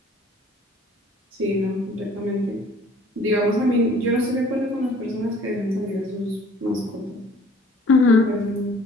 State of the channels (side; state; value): both; normal; correlation 0.53